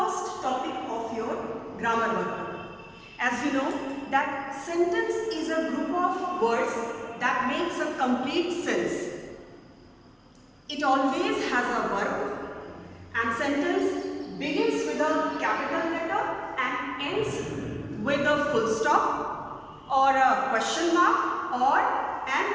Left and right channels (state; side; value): identical; both; correlation 1.00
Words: topic of your grammar work. As you know that sentence is a group of words that makes a complete sense. It always has a verb and sentence begins with a capital letter and ends with a full stop or a question mark or